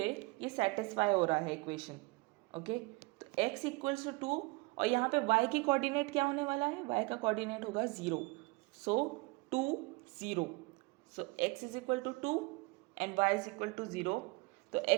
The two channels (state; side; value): quieter; left; 24.8 dB